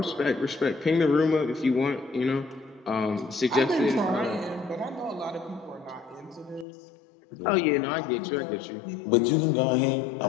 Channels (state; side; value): drops out; right; at 6.7 s